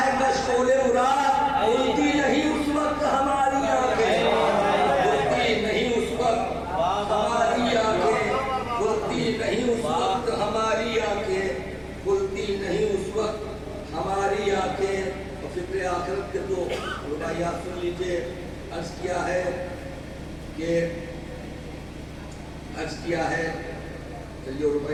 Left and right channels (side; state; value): both; identical; correlation 1.00